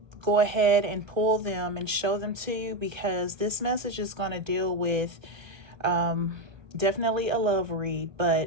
go ahead and pull them and show them to you, because this message is going to deal with definitely a love read,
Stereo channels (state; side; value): late; left; 1.5 ms